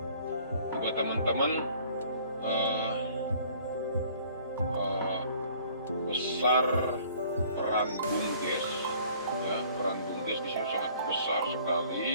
Buat teman-teman besar peran BUMDes ya, peran BUMDes di sini sangat besar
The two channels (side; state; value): both; inverted; correlation -0.55